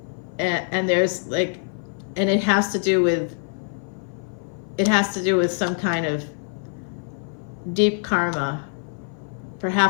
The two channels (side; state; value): right; silent; 56 dB below the other